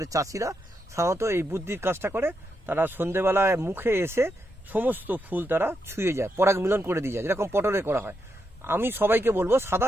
চাষিরা সাধারণত এই বুদ্ধির কাজটা করে। তারা সন্ধেবেলায় মুখে এসে সমস্ত ফুল তারা ছুঁয়ে যায়, পরাগ মিলন করে দিয়ে যায়, যেরকম পটলে করা হয়। আমি সবাইকে বলবো সাদা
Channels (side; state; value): both; normal; correlation 0.83